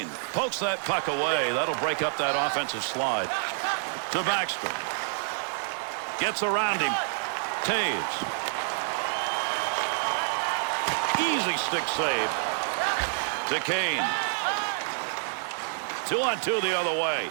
Pokes that puck away. That'll break up that offensive slide. To Backstrom. Gets around him. Taves. Easy stick save. To Kane. 2-on-2 the other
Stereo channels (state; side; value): silent; left; 59 dB below the other